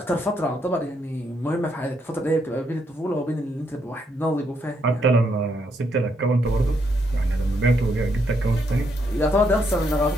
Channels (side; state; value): both; normal; correlation 0.75